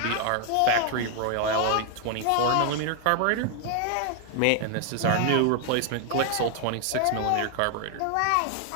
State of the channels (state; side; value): different; both; correlation 0.00